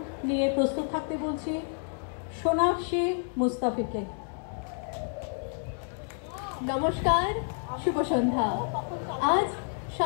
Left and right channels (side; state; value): right; silent; 58 dB below the other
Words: নিয়ে প্রস্তুত থাকতে বলছি সোনাক্ষী মুস্তাফিকে। নমস্কার, শুভ সন্ধ্যা। আজ